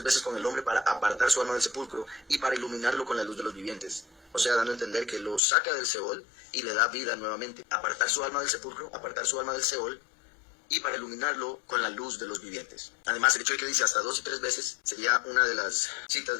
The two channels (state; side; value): drops out; right; at 5.4 s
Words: veces con el hombre para apartar su alma del sepulcro y para iluminarlo con la luz de los vivientes. O sea, dando a entender que lo saca del Seol y le da vida nuevamente. Apartar su alma del sepulcro, apartar su alma del Seol y para iluminarlo con la luz de los vivientes. Además, el hecho de que dice hasta 2 y 3 veces sería una de las citas